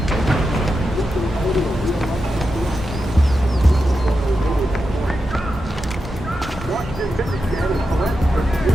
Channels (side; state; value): both; normal; correlation 0.89